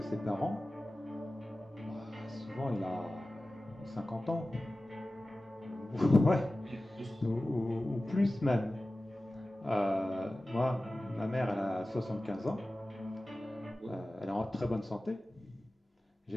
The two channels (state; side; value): normal; both; correlation 0.96